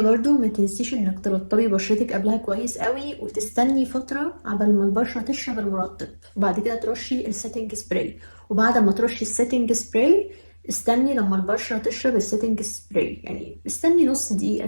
ما تنسيش انك ترطبي بشرتك قبلها كويس قوي، وتستني فتره عبال ما البشره تشرب المرطب، وبعد كده ترشي السيتنج سبراي. وبعد ما ترشي السيتنج سبراي استني لما البشره تشرب السيتنج سبراي، يعني استني نص دقيقه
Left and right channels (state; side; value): inverted; both; correlation -1.00